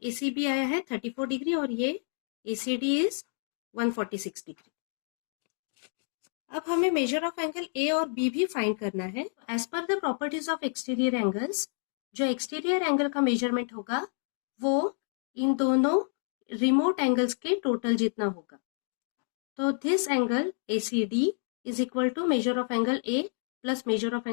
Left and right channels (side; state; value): right; silent; 58 dB below the other